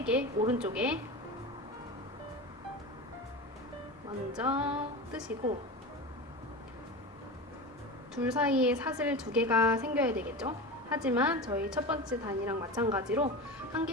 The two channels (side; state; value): both; normal; correlation 0.24